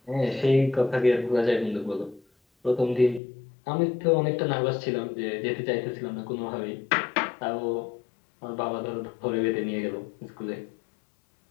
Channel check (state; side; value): drops out; right; at 3.2 s